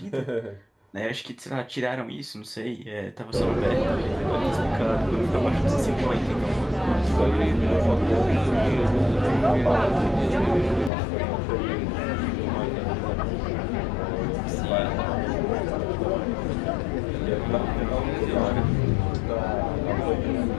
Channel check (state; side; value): drops out; right; at 10.9 s